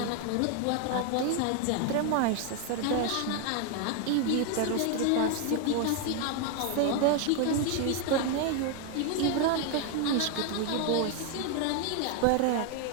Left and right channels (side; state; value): both; different; correlation 0.01